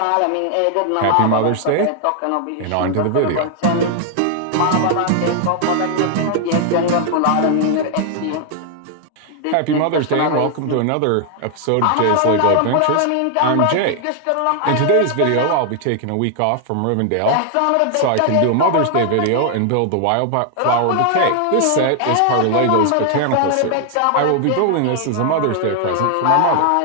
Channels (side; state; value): both; different; correlation 0.00